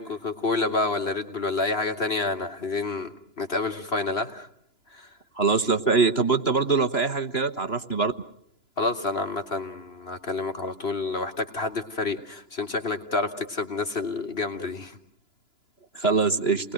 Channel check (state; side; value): late; right; 2.9 ms